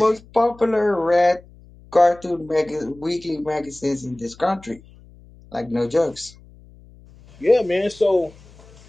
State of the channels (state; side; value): noise; left; hum, 24 dB below the sound